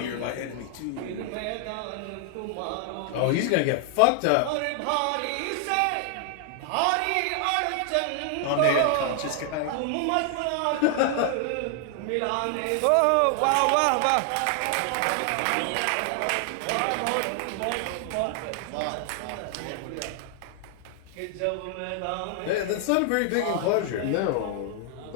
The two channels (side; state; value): both; different; correlation 0.00